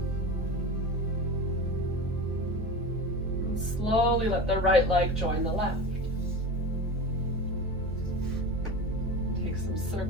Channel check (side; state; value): both; normal; correlation 0.28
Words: And slowly let the right leg join the left. Take some